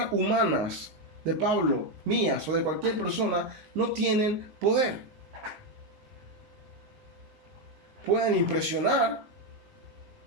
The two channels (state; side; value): late; left; 19 ms